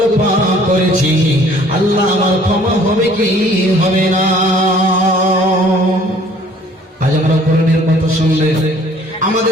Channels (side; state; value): both; normal; correlation 0.56